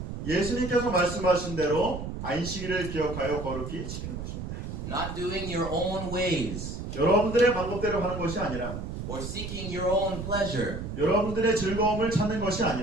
예수님께서 말씀하신 대로 안식일을 기억하여 거룩히 지키는 것입니다. Not doing your own ways 여러분들의 방법대로 하는 것이 아니라 or seeking your own pleasure. 여러분들의 즐거움을 찾는 것이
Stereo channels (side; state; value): right; noise; rumble, 7 dB below the sound